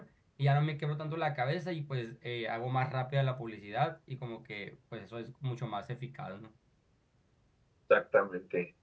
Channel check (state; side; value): identical; both; correlation 1.00